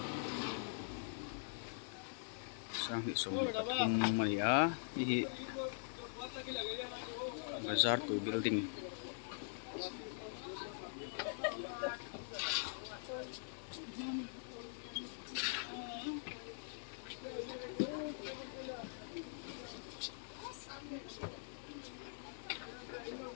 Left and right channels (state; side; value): silent; right; digital silence